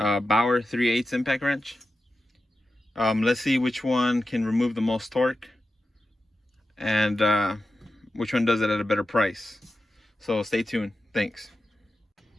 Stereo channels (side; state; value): both; normal; correlation 0.92